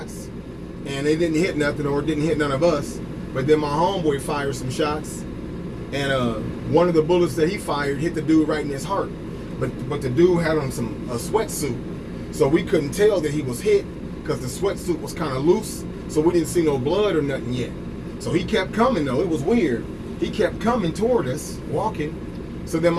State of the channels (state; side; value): identical; both; correlation 1.00